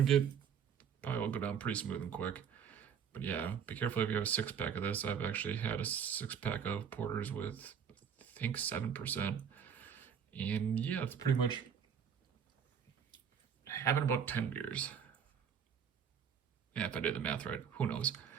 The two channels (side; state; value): left; quieter; 7.6 dB